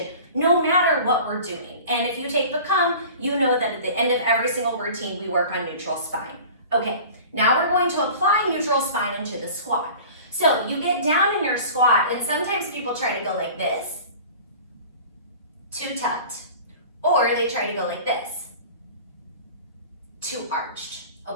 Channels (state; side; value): inverted; both; correlation -0.41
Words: no matter what we're doing. And if you take Become, you know that at the end of every single routine, we work on neutral spine. Okay, now we're going to apply neutral spine into the squat. So you get down in your squat, and sometimes people try to go like this, too tucked, or they try to go like this, too arched,